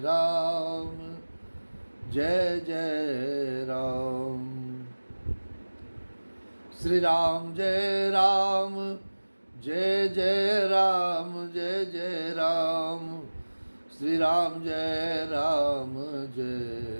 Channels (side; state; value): both; inverted; correlation -1.00